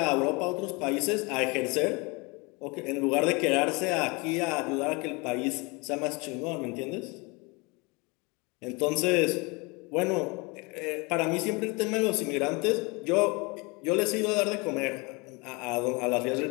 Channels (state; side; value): quieter; right; 27.7 dB